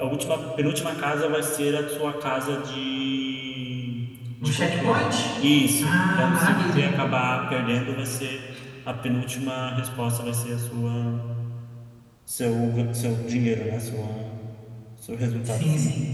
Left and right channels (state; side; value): identical; both; correlation 1.00